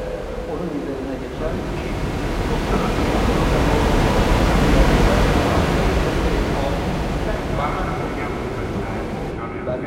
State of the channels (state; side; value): identical; both; correlation 1.00